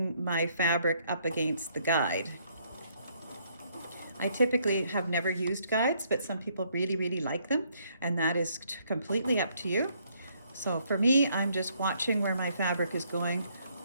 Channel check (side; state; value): both; inverted; correlation -0.69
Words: my fabric up against the guide. I typically have never used guides, but some people really like them, and that is completely up to you. So for me, I'm just watching where my fabric is going